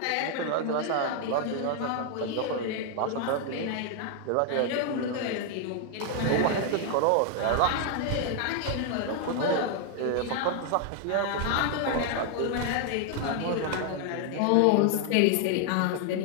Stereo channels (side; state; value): both; different; correlation 0.00